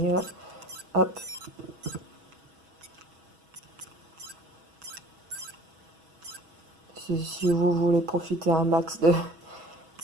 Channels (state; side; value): late; left; 6.2 ms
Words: Hop. Si vous voulez profiter un max